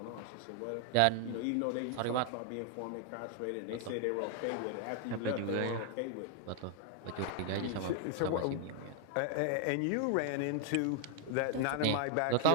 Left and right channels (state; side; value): different; both; correlation 0.00